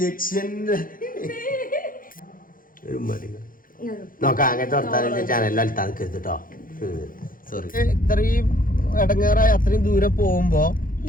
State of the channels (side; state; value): right; late; 0.40 ms